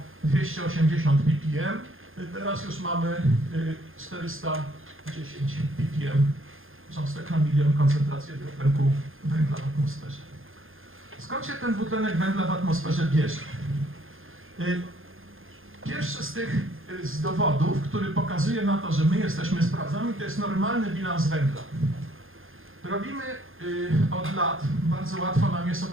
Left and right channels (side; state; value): left; late; 0.60 ms